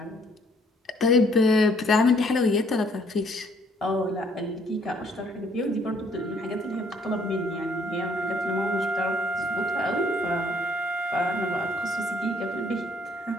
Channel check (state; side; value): normal; both; correlation 0.64